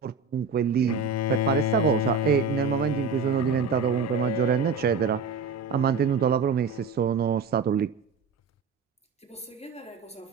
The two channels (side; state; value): left; quieter; 4.4 dB